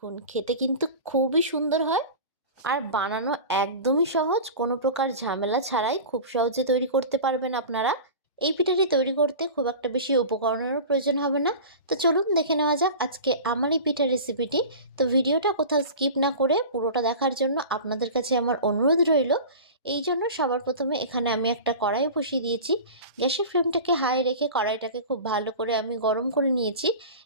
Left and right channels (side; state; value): both; inverted; correlation -0.34